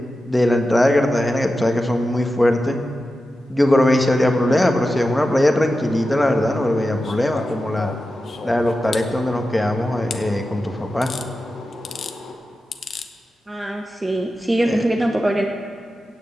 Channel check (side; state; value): both; normal; correlation 0.92